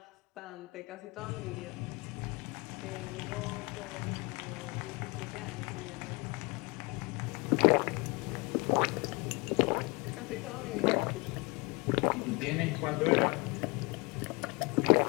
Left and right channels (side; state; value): right; quieter; 27.1 dB